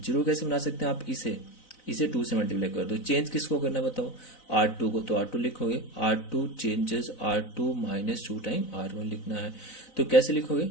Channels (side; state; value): right; late; 4.0 ms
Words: 0 कैसे बना सकते हैं आप, इसे 2 से मल्टीप्लाई कर दो। चेंज किसको करना बताओ, R2 को, तो R2 लिखोगे, R2 changes R2 -2 time R1 लिखना है, तो कैसे लिखोगे,